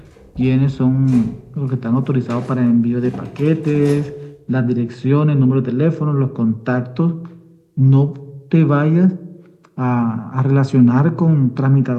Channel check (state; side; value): identical; both; correlation 1.00